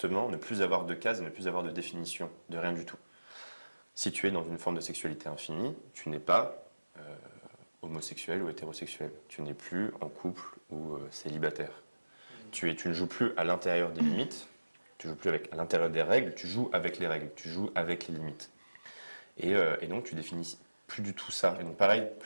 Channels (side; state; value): both; inverted; correlation -1.00